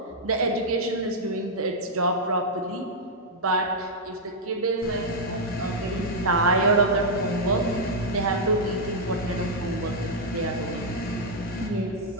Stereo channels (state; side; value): normal; both; correlation -0.04